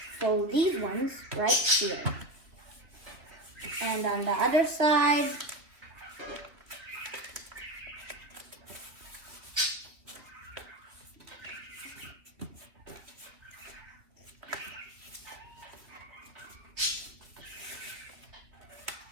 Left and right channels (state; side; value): late; left; 2.9 ms